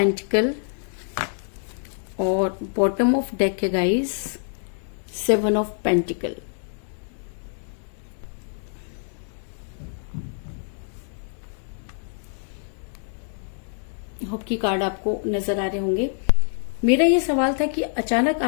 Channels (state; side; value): silent; right; digital silence